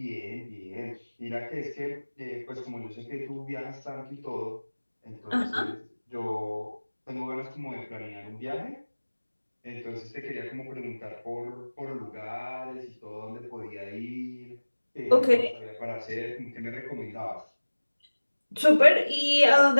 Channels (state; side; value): inverted; both; correlation -1.00